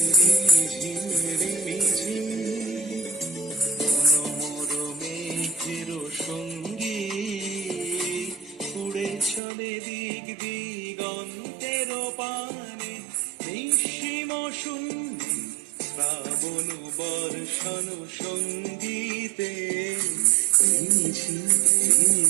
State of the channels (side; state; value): left; drops out; at 9.4 s